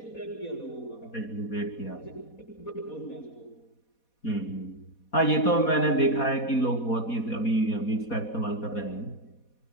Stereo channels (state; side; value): late; right; 4.2 ms